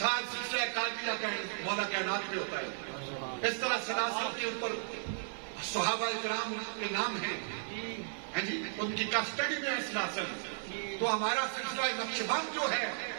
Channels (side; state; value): left; silent; 54 dB below the other